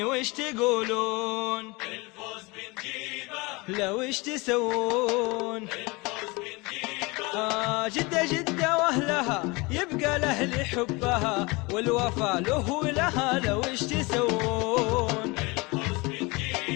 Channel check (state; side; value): quieter; right; 25.4 dB